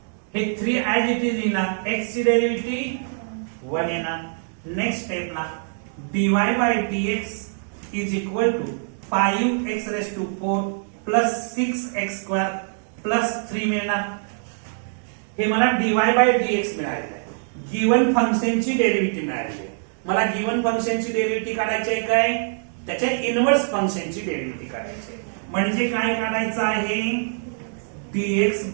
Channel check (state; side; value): silent; left; digital silence